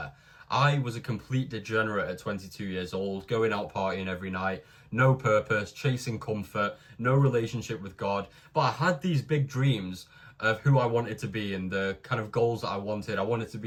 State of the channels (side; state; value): both; identical; correlation 1.00